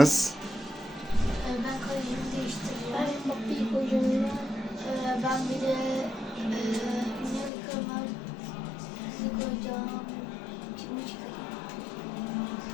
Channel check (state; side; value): drops out; right; at 7.5 s